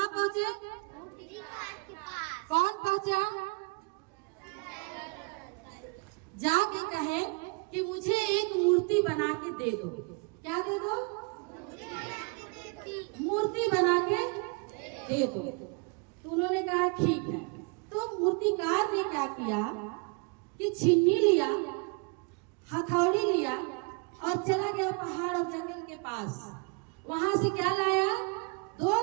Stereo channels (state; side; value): quieter; left; 31.3 dB